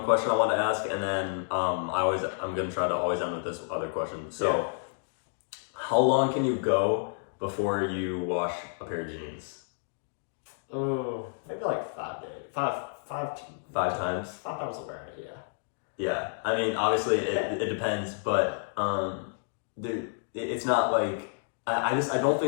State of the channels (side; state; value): right; silent; digital silence